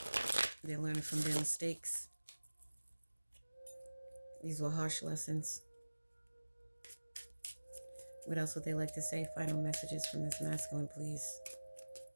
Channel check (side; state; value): both; inverted; correlation -1.00